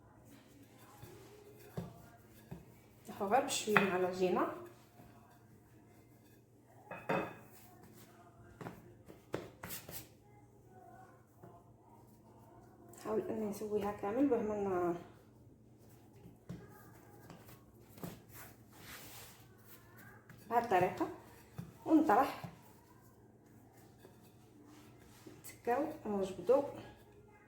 نحو غير بشويه مع العجينه نحاول اني نسويها كامل بهما بهذه الطريقه ونطرح نتكاو ونجبدو.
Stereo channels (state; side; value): identical; both; correlation 1.00